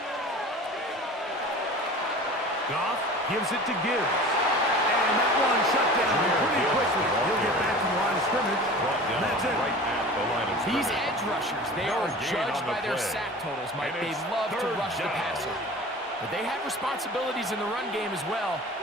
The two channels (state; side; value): normal; both; correlation 0.39